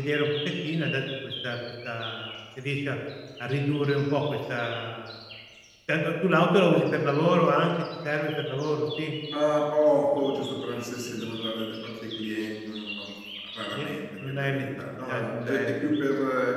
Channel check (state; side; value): identical; both; correlation 1.00